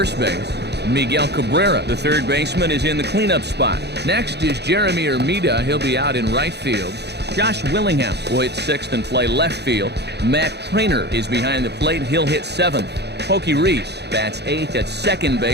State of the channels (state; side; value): late; left; 0.49 ms